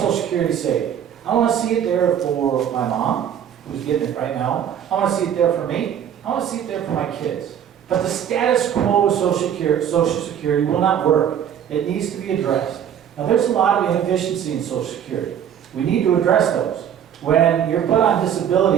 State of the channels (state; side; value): quieter; left; 9.3 dB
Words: Security saved. I want to see it there for my mom, who's getting it right now. I want to see it there for me. I want to see it there for my kids. But the status quo of Social Security will not work. It needs to be addressed. Now, there's a lot of inefficiency in Social Security. We need to address those. When you're put on